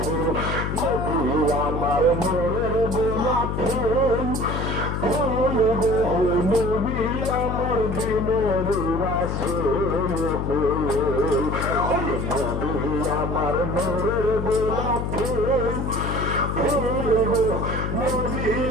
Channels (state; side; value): noise; left; hum, 2 dB below the sound